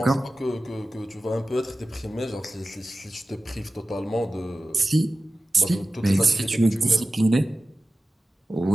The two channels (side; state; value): both; normal; correlation 0.95